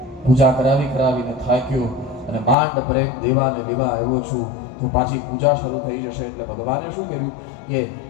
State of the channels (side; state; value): right; drops out; at 2.6 s